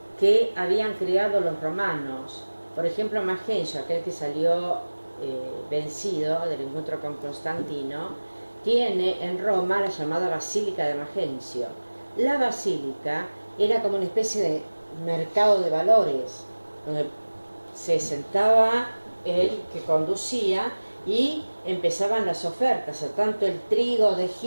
que habían creado los romanos. Por ejemplo, Magencio, aquel que salió vencido del encuentro con Constantino, tiene en Roma la llamada Basílica de Magencio. La basílica era como una especie de mercado de valores, donde se sentaba el que conducía y empezaban las ofertas, a tanto el trigo de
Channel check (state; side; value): inverted; both; correlation -1.00